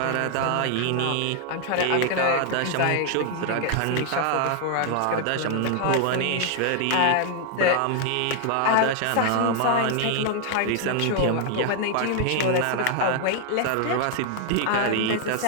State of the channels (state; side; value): different; both; correlation 0.00